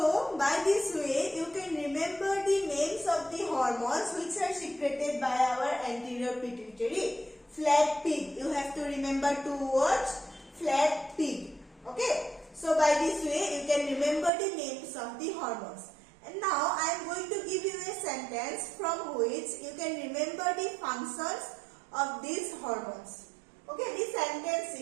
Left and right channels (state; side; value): drops out; left; at 14.3 s